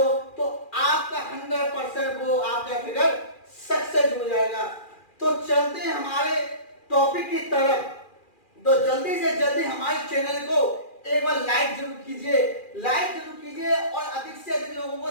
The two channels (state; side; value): late; right; 2.4 ms